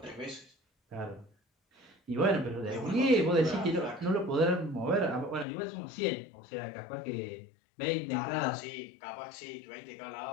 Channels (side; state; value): right; drops out; at 5.5 s